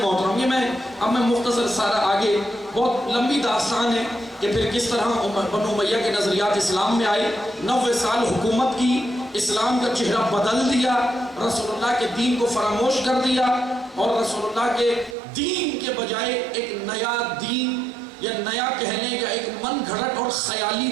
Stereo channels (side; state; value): left; drops out; at 15.2 s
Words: یہ اب میں مختصر سارا آگے بہت لمبی داستان ہے کہ پھر کس طرح بنو امیہ کے نظریات اسلام میں آئے، 90 سال حکومت کی، اسلام کا چہرہ بدل دیا، رسول اللہ کے دین کو فراموش کر دیا، اور رسول اللہ کے دین کے بجائے ایک نیا دین یا نیا کہنے کا ایک من گھڑت اور خیالی